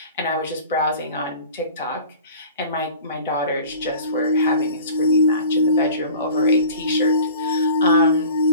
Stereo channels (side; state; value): both; inverted; correlation -0.43